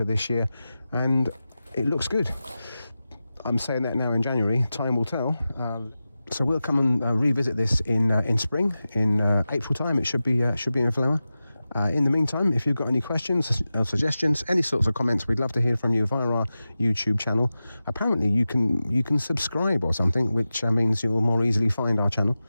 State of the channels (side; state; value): both; inverted; correlation -0.94